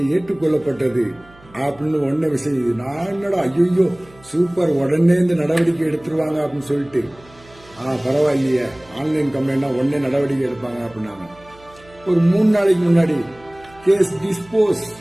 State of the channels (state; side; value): noise; right; hum, 25 dB below the sound